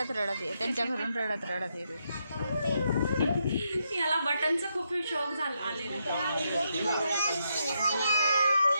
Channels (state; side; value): inverted; both; correlation -0.80